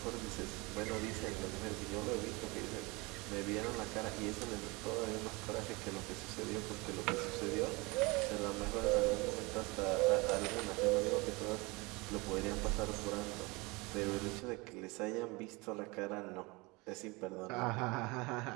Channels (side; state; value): left; quieter; 25.3 dB